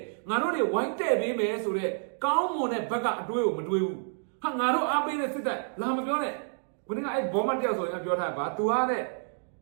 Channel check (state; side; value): silent; left; digital silence